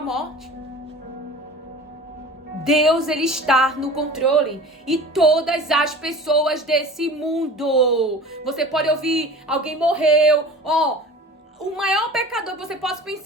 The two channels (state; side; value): normal; both; correlation 0.39